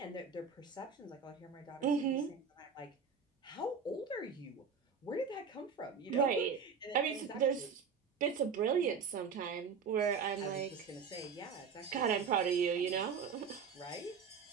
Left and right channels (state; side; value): quieter; left; 5.9 dB